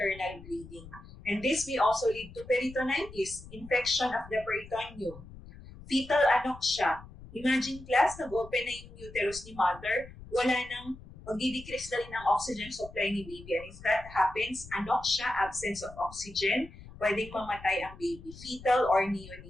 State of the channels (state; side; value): noise; left; rumble, 17 dB below the sound